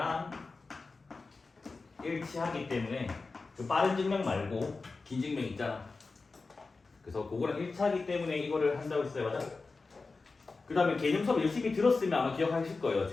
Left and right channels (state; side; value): quieter; right; 4.0 dB